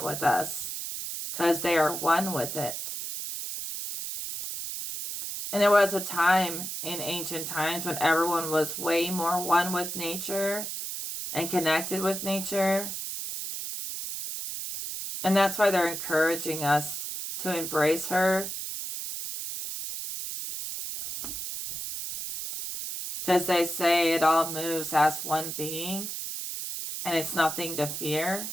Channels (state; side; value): noise; right; hiss, 5 dB below the sound